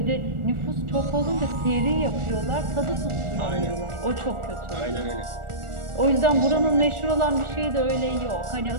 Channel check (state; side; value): late; left; 1.4 ms